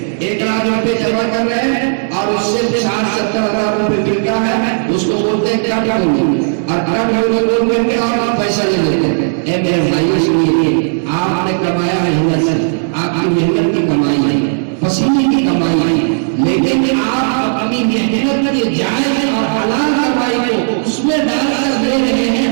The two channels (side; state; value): left; silent; digital silence